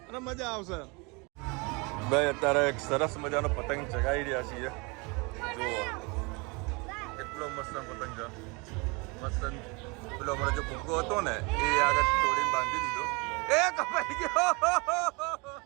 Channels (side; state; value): left; quieter; 28.7 dB